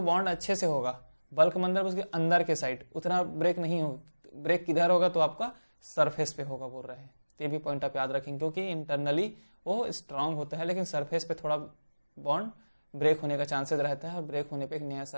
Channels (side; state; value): both; inverted; correlation -1.00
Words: बॉन्ड अच्छे से होगा, बल्क मतलब उसके अंदर के साइड उतना ब्रेक नहीं होगा। ब्रेक किधर होगा? तो आपका सरफेस पे होगा बोल रहे हैं। तो ये भी पॉइंट आप याद रखेंगे, क्योंकि इंटरनली वो स्ट्रांग होता है, लेकिन सरफेस पे थोड़ा बॉन्ड ब्रेक होने का चांसेस रहता है, और ब्रेक होने पे एक नया